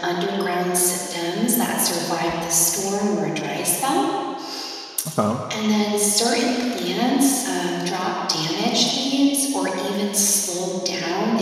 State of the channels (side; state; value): both; identical; correlation 1.00